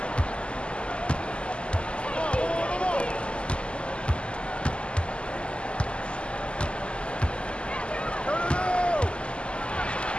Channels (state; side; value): late; right; 0.052 ms